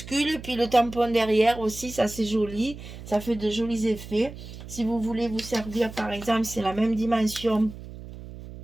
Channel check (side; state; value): right; noise; hum, 13 dB below the sound